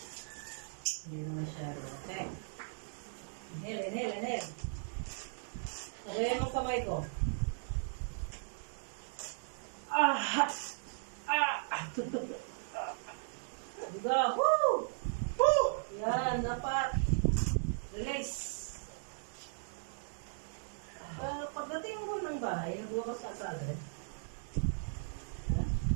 masyado. Okay. Inhale. Sabayan mong kamay ko. Diba? Woo! Woo! Yan, dapat. Release. Pagdating mo ng bahay, nagbabasa ka agad. Ha?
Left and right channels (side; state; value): left; silent; digital silence